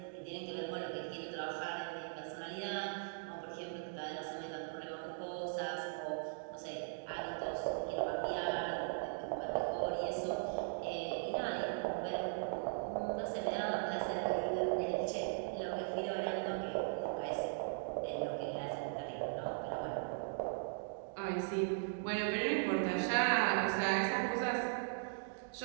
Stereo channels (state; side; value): silent; left; digital silence